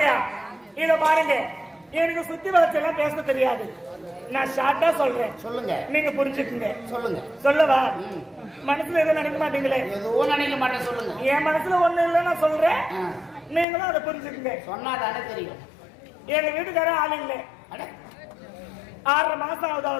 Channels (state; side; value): drops out; right; at 13.7 s